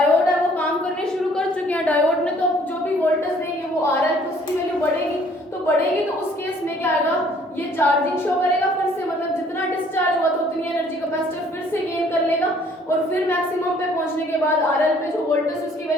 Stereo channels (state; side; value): normal; both; correlation 0.59